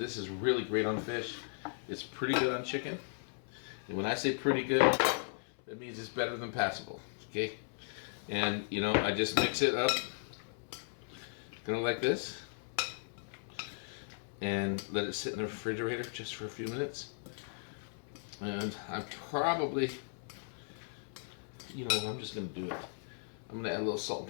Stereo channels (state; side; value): silent; right; 53 dB below the other